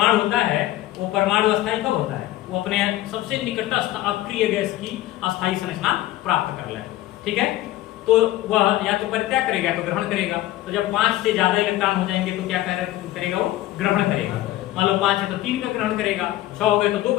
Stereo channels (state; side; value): quieter; right; 15.5 dB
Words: होता है, वो परमाणु अस्थायी कब होता है, वो अपने सबसे निकटस्थ अक्रिय गैस की अस्थायी संरचना प्राप्त कर ले, ठीक है। तो वह या तो परित्याग करेगा तो ग्रहण करेगा। तो जब 5 से ज्यादा इलेक्ट्रॉन हो जाएंगे तो क्या करेगा, वो ग्रहण करेगा। मान लो 5 है तो 3 का ग्रहण करेगा, 6 हो गए तो 2